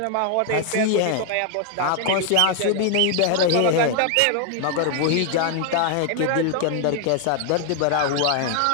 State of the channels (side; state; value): both; different; correlation 0.00